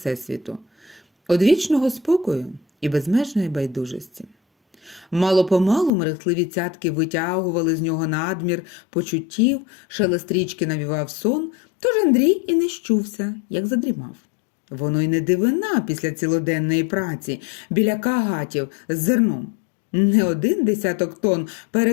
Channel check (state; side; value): drops out; right; at 5.9 s